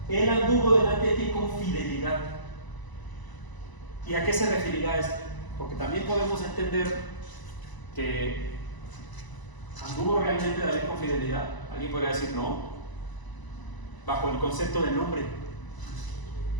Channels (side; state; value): right; late; 1.0 ms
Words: él anduvo delante de ti con fidelidad. ¿Y a qué se referirá esto? Porque también podemos entender que anduvo realmente David con fidelidad. Alguien podría decir no, bajo el concepto del nombre.